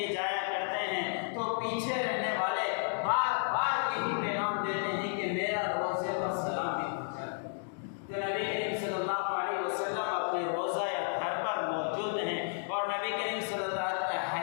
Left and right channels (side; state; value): right; silent; digital silence